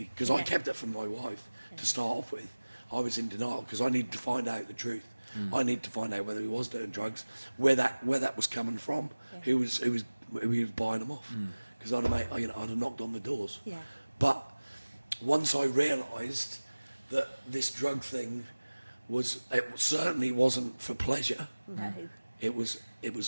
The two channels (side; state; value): both; inverted; correlation -1.00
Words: because I Yeah. kept it from my wife to start off with, I was in denial because I needed to find out the truth. I needed to find out whether he was doing drugs, where that was coming from, who was buying them off. Because I'd have knocked on the doors. Yeah. But once I realised that this drug thing it certainly wasn't for pleasure. No. It